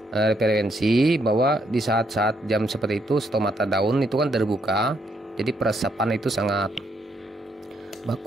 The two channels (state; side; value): normal; both; correlation 0.74